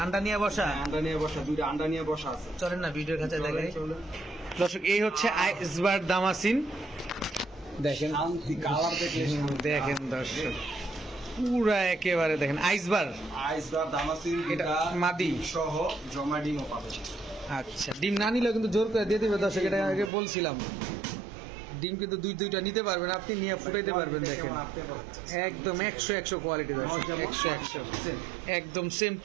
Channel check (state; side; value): drops out; left; at 20.1 s